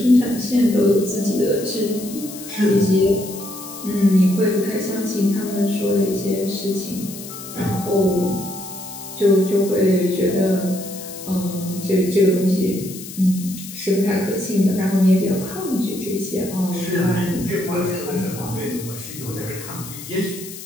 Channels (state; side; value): noise; left; hiss, 13 dB below the sound